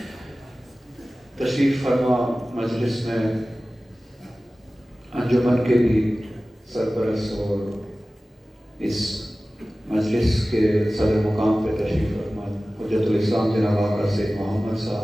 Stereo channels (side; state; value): both; normal; correlation 0.97